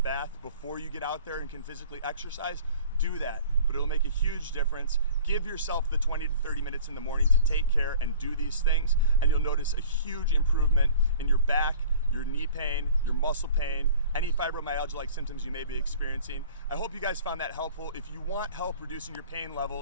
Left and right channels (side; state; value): both; inverted; correlation -0.46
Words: bath before you get out there and can physically exercise, do that. But it'll make a huge difference. Give yourself the 20 to 30 minutes in the morning to take care and do these things, and you'll notice a huge improvement in your back, your knee pain, your muscle pain, any fibromyalgia-like symptoms you may be experiencing. I hope you guys found that helpful. If you want help reducing your pain